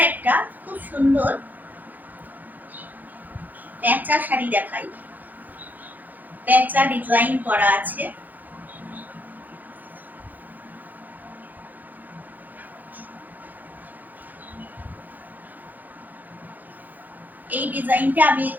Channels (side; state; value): left; late; 0.083 ms